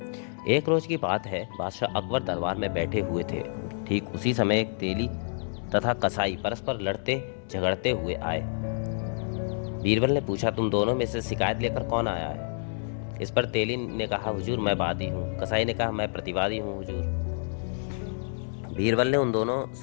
एक रोज की बात है, बादशाह अकबर दरबार में बैठे हुए थे। ठीक उसी समय एक तेली तथा कसाई परस्पर लड़ते झगड़ते हुए आए। बीरबल ने पूछा, तुम दोनों में से शिकायत लेकर कौन आया है? इस पर तेली ने कहा, हुजूर मैं वादी हूँ। कसाई ने कहा, मैं प्रतिवादी हूँ हुजूर। बीरबल ने उन दोनों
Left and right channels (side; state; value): right; silent; digital silence